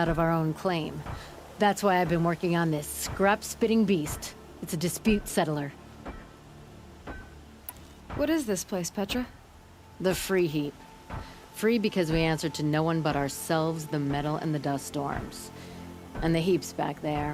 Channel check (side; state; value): both; identical; correlation 1.00